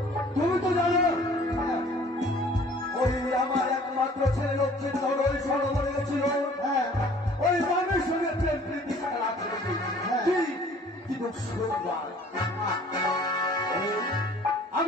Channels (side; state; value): both; normal; correlation 0.52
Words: তুমি তো জানো ওই আমার একমাত্র ছেলে লক্ষ্মীন্দর ওই সরোবরে গেছিল, ওই মানের সঙ্গে প্রেম প্রীতি খেলা করেছি। কি দুঃখ